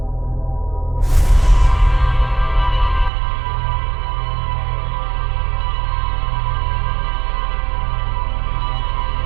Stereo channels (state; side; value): drops out; left; at 3.1 s